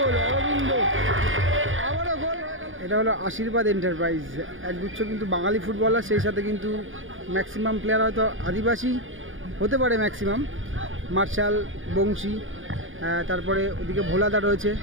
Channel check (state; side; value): late; left; 0.58 ms